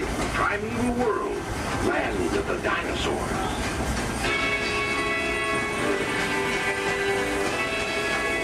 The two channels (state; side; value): identical; both; correlation 1.00